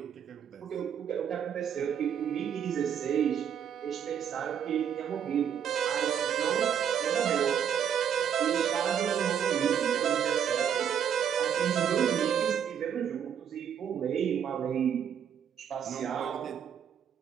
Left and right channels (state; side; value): quieter; left; 8.5 dB